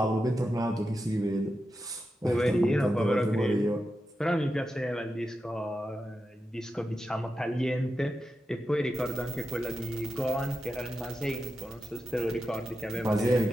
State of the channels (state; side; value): normal; both; correlation 0.89